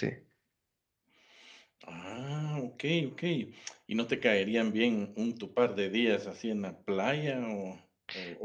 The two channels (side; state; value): both; identical; correlation 1.00